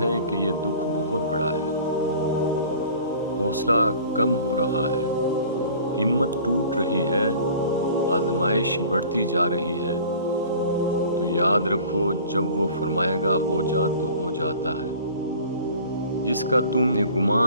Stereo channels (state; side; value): inverted; both; correlation -0.46